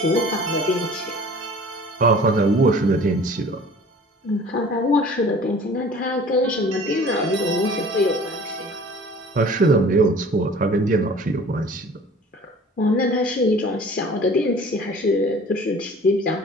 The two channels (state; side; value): normal; both; correlation 0.47